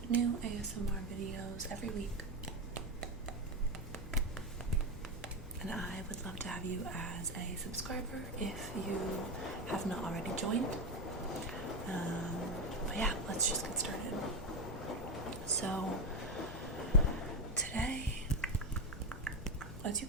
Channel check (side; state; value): both; normal; correlation 0.12